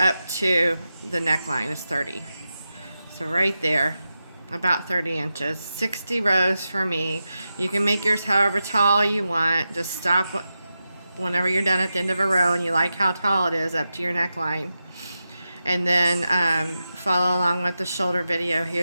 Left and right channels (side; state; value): both; inverted; correlation -0.90